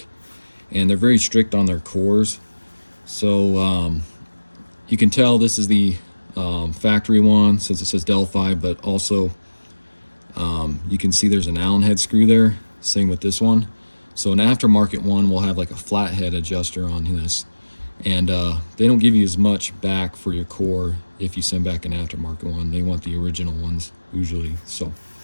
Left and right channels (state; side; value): inverted; both; correlation -1.00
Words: And they're very strict on their cores. So you can tell this is the factory one since it says Delphi, but also you can see there's an Allen head screw there. Same with this one. So an aftermarket one will have like a flathead adjuster on this. And they don't give you as much back for your core if you send back an aftermarket one. They want the original ones usually. So